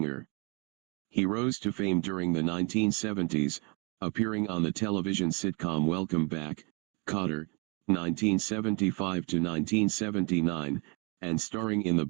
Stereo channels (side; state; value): left; quieter; 32.2 dB